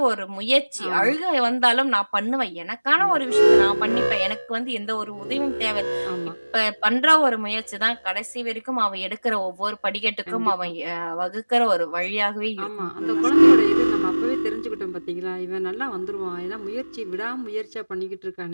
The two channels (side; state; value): both; inverted; correlation -1.00